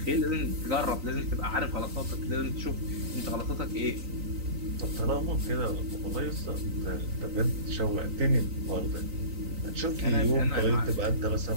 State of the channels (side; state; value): left; late; 3.9 ms